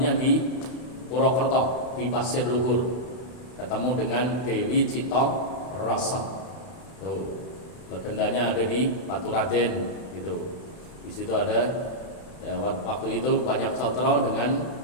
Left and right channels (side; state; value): right; late; 31 ms